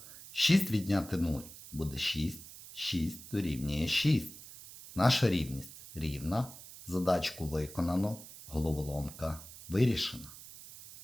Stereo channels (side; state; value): right; noise; hiss, 16 dB below the sound